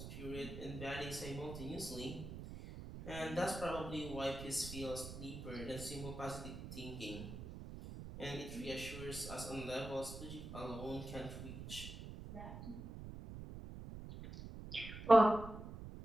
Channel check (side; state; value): right; noise; rumble, 10 dB below the sound